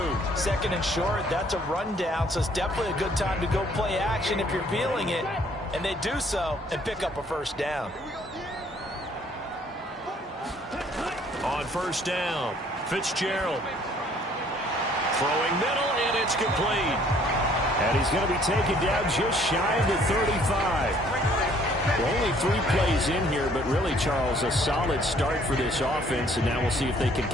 Second and short, that's a rundown, so it's definitely a good time to go play action if you're feeling it. And they do so and pick up a first down. On first down, Fitzgerald. Throwing middle, and it's complete. And he's going to be taken down just shy of the 35. Well, only 3 plays in here, but really, Charles, a solid start for this offense. And now we'll see if they can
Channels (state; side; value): normal; both; correlation 0.61